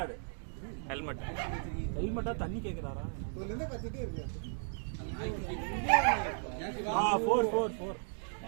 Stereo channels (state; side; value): silent; left; 54 dB below the other